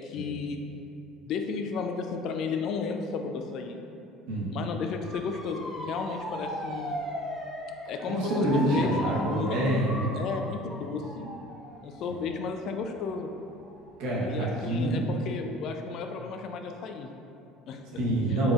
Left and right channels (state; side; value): normal; both; correlation 0.46